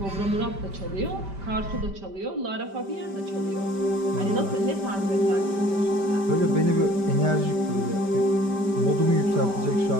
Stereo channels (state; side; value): late; left; 5.1 ms